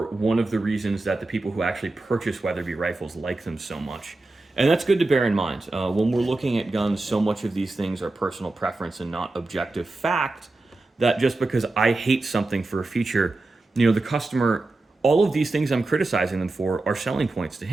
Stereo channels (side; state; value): left; quieter; 3.1 dB